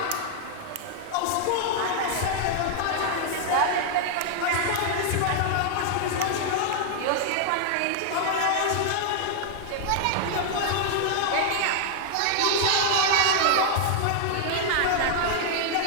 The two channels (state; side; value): different; both; correlation 0.00